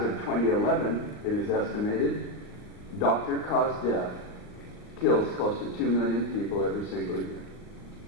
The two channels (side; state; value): right; late; 39 ms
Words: of 2011, it is estimated doctor-caused death kills close to 2 million people every single year.